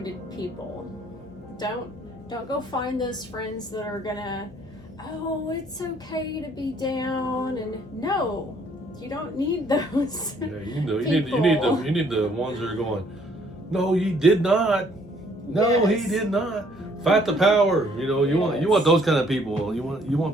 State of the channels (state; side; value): noise; left; hum, 23 dB below the sound